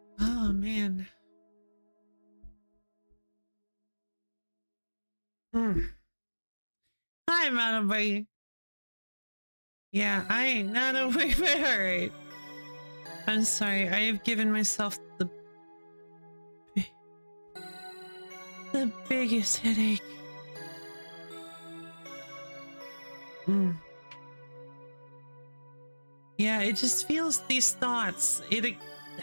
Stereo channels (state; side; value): inverted; both; correlation -1.00